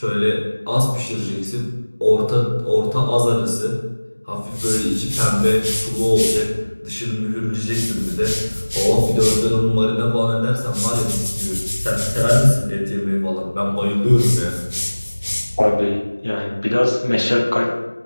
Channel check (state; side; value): inverted; both; correlation -1.00